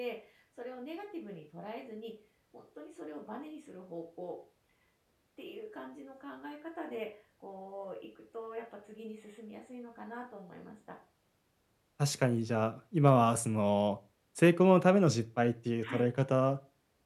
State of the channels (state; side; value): identical; both; correlation 1.00